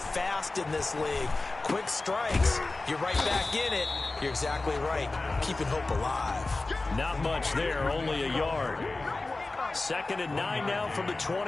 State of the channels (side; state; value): right; quieter; 3.3 dB